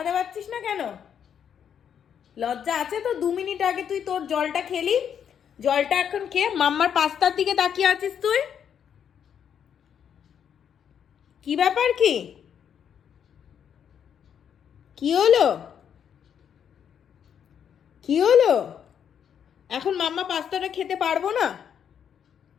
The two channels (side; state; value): right; quieter; 8.3 dB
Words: পারছিস না কেন? লজ্জা আছে তো? 2 মিনিট আগে তুই তোর জলটা খেলি, জলটা এখন খেয়ে মাম্মার পাস্তার দিকে তাকিয়ে আছিস তুই। কি ব্যাপার? কি কি হলো? কি হলো? এখন মাম্মা পাস্তাটা খেতে পারবো না?